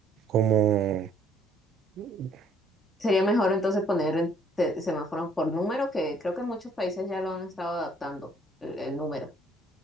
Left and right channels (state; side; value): normal; both; correlation 0.62